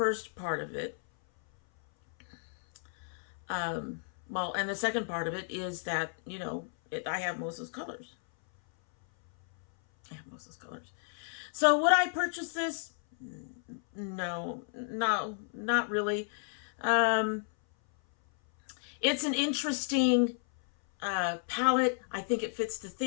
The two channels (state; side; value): silent; right; 56 dB below the other